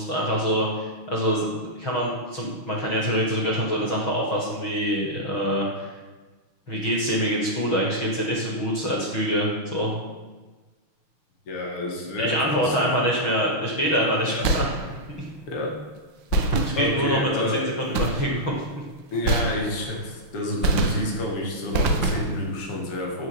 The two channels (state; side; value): late; right; 6.4 ms